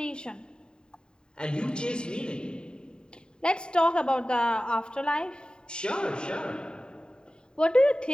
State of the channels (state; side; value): late; right; 0.048 ms